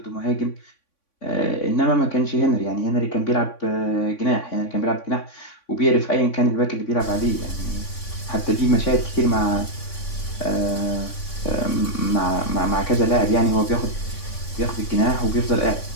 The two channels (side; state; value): right; late; 3.5 ms